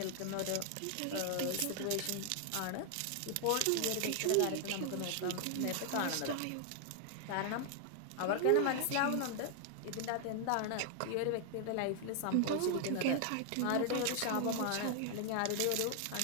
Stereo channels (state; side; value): different; both; correlation 0.00